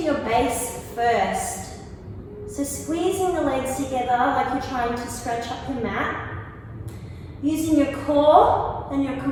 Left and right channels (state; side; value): identical; both; correlation 1.00